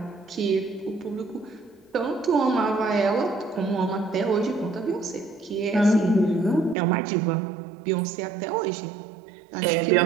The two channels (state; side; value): drops out; left; at 6.8 s